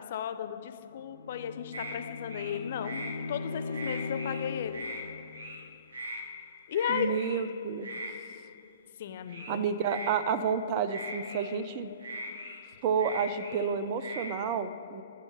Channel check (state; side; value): inverted; both; correlation -0.45